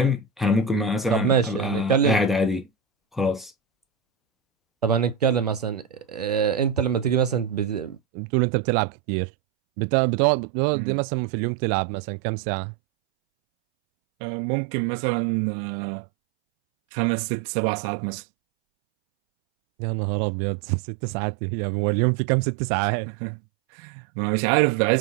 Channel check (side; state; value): left; drops out; at 8.0 s